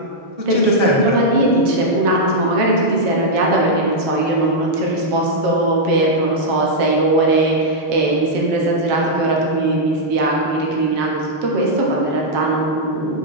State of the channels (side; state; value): left; late; 7.2 ms